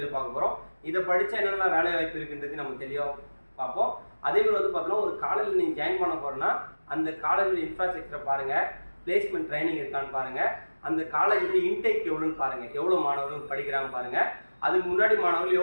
பார்க்க போறோம். இத படிச்சா என்னென்ன வேலை வாய்ப்பு இருக்குன்றது நம்ம தெளிவா பாப்போம். அதே மாதிரி வந்து பார்த்தா ஒரு காலேஜ்ல நீங்க ஜாயின் பண்ண போறேன்னா அந்த காலேஜ்ல இன்ஃப்ராஸ்ட்ரக்சர் பாருங்க, பிளேஸ்மென்ட் ட்ரைனிங் இருக்கான்னு பாருங்க, அந்த காலேஜ்ல இன்டேக் எவ்வளவுன்னு பாருங்க, எவ்வளவு மாணவர்கள் படிக்கிறாங்க பாருங்க, அதுக்கு முன்னாடி மாணவர்கள்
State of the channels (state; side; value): inverted; both; correlation -1.00